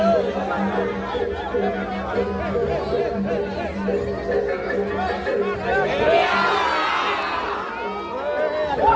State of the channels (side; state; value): both; identical; correlation 1.00